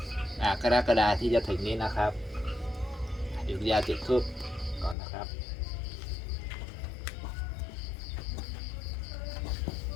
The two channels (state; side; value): drops out; right; at 5.0 s